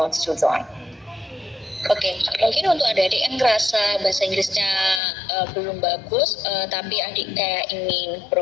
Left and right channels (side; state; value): right; drops out; at 5.0 s